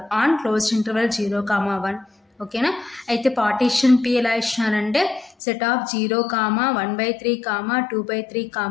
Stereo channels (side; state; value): right; drops out; at 5.4 s